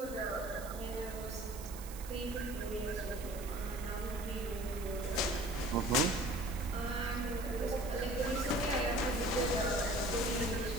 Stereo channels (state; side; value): noise; right; hiss, 14 dB below the sound